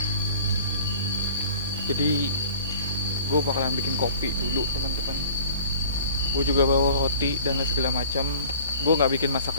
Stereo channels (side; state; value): both; inverted; correlation -0.45